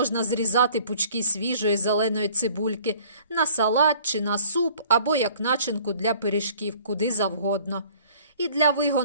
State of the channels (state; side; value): inverted; both; correlation -0.53